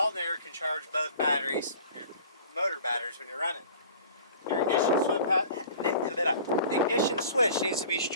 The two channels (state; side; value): inverted; both; correlation -0.46